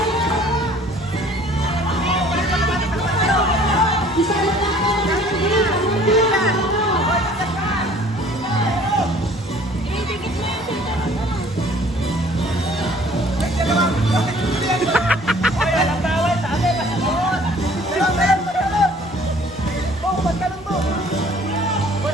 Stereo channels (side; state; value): both; normal; correlation 0.53